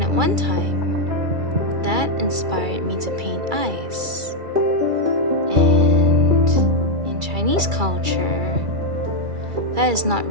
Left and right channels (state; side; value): late; left; 2.3 ms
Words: at one time, that inspired me to paint eyes. And in Chinese culture, that is not